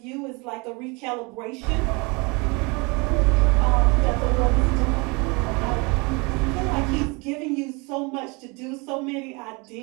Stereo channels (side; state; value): left; quieter; 28.7 dB